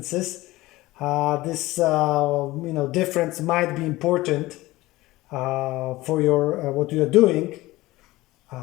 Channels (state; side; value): quieter; right; 18.8 dB